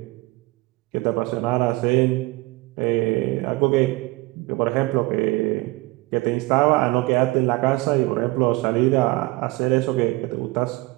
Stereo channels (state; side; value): quieter; left; 22.1 dB